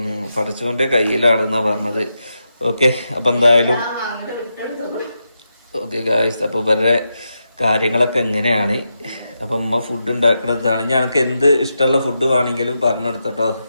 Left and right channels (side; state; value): both; inverted; correlation -0.86